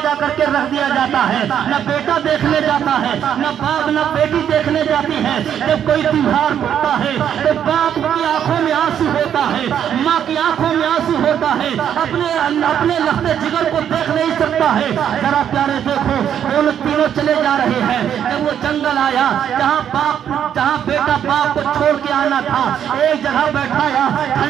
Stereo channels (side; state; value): left; quieter; 9.3 dB